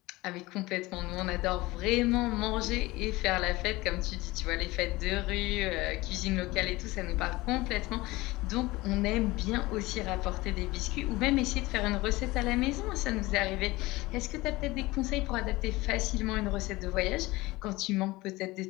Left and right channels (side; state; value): right; quieter; 20.4 dB